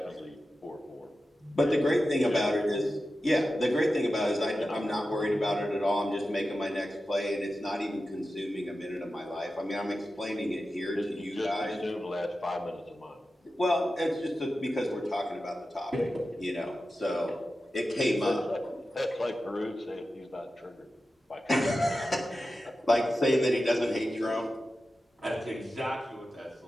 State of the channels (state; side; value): normal; both; correlation 0.93